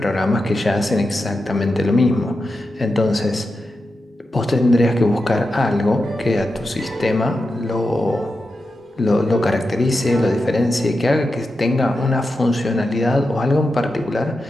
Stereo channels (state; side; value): normal; both; correlation 0.89